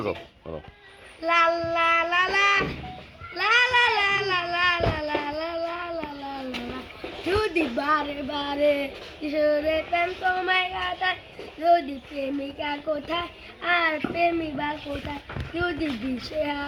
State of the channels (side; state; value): both; identical; correlation 1.00